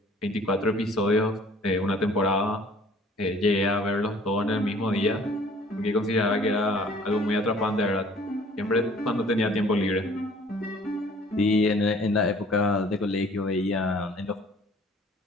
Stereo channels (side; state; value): both; normal; correlation 0.54